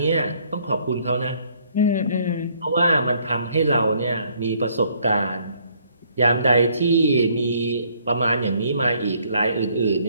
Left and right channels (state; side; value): inverted; both; correlation -0.65